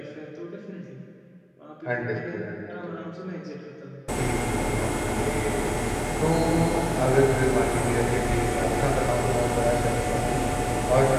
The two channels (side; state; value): both; identical; correlation 1.00